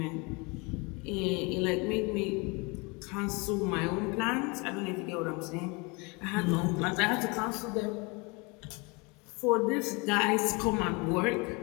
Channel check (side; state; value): right; quieter; 28.8 dB